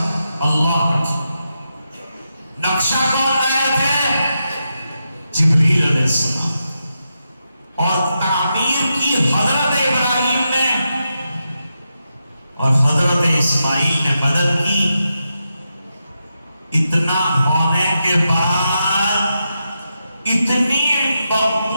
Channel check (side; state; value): both; inverted; correlation -0.86